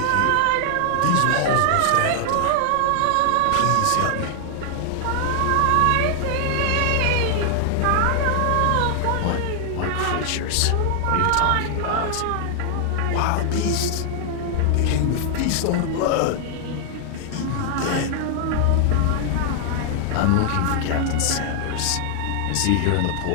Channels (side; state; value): both; different; correlation 0.00